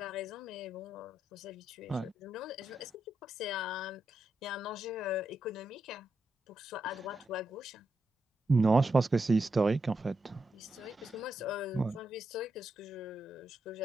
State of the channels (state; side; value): normal; both; correlation 0.84